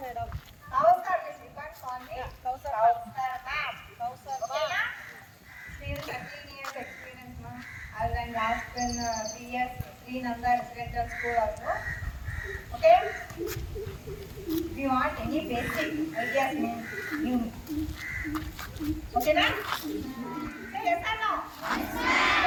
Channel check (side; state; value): both; identical; correlation 1.00